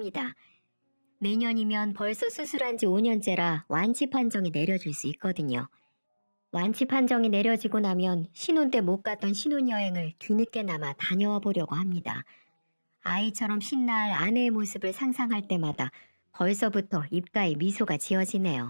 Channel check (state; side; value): inverted; both; correlation -1.00